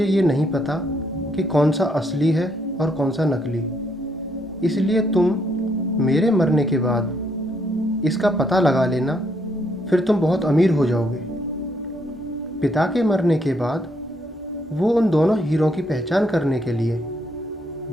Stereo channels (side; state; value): both; normal; correlation 0.73